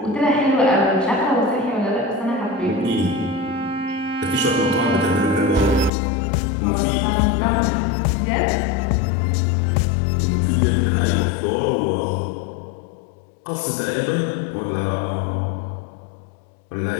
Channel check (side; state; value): right; drops out; at 5.9 s